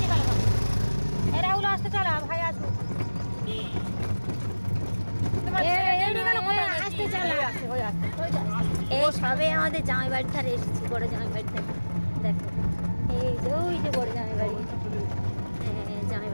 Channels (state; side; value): inverted; both; correlation -1.00